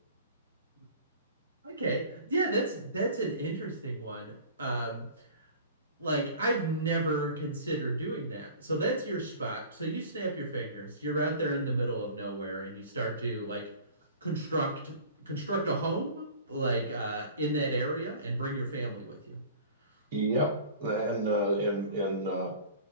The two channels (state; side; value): inverted; both; correlation -0.43